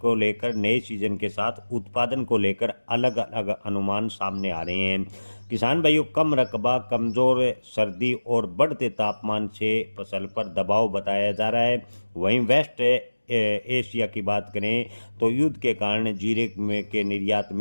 लेकर नए सीजन के साथ उत्पादन को लेकर अलग अलग अनुमान सामने आ रहे हैं। किसान भाइयों, कम रकबा, कमजोर सर्दी और बढ़ते तापमान से फसल पर दबाव बताया जा रहा है। वहीं वेस्ट एशिया की बात करें तो युद्ध के कारण जीरे में के निर्यात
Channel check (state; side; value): inverted; both; correlation -1.00